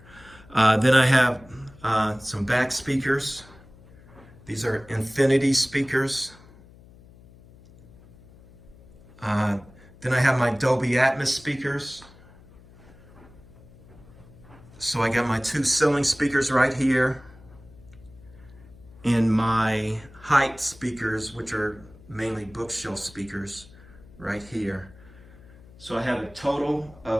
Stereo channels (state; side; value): noise; left; hum, 23 dB below the sound